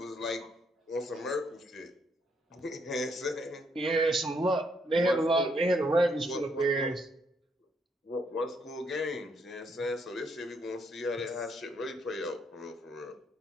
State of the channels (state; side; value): normal; both; correlation 0.73